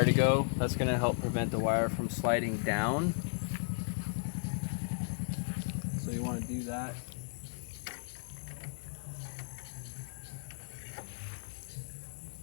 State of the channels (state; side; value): silent; right; digital silence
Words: to go. That's going to help prevent the wire from sliding down. So you want to do that.